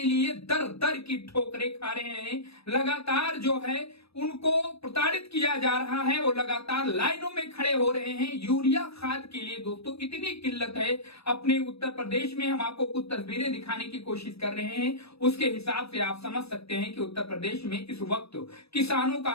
लिए दर दर की ठोकरें खा रहे हैं। लगातार जो है उनको प्रताड़ित किया जा रहा है, वो लगातार लाइनों में खड़े हो रहे हैं यूरिया खाद के लिए। दोस्तों, इतनी किल्लत है अपने उत्तर प्रदेश में। हम आपको कुछ तस्वीरें दिखाने की कोशिश कर रहे हैं, उसके हिसाब से आप समझ सकते हैं कि उत्तर प्रदेश में इस वक्त किसानों का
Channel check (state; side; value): late; right; 0.78 ms